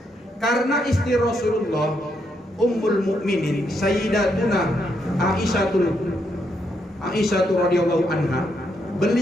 Karena istri Rasulullah Ummul Mukminin Sayyidatuna Aisyah radhiyallahu anha,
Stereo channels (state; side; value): normal; both; correlation 0.78